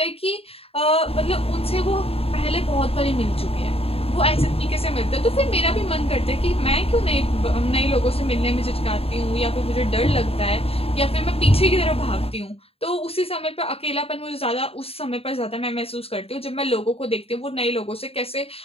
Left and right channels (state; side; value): late; right; 0.28 ms